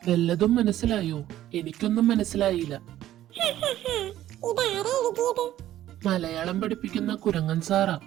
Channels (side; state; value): left; quieter; 13.2 dB